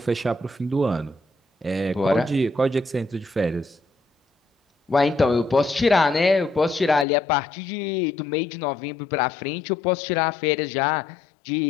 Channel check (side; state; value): right; drops out; at 7.1 s